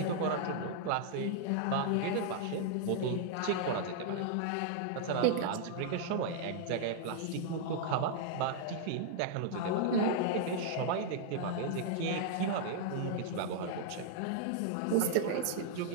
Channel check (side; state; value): both; different; correlation -0.01